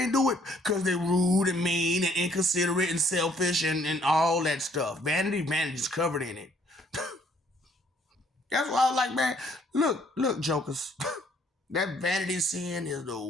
do it? Because they're rude and mean and inconsiderate and selfish and all that stuff. Vanity is covered in it. That's why I was like, man, look, jokers. That vanity sin is the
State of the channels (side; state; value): both; normal; correlation 0.63